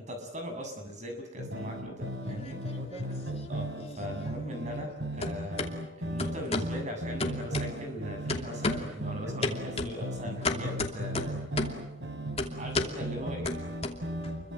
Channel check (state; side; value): normal; both; correlation 0.45